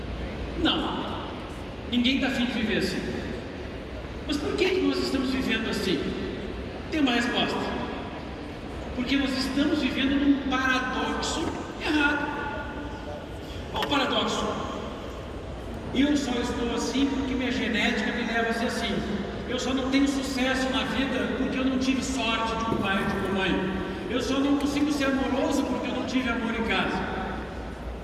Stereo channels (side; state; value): both; identical; correlation 1.00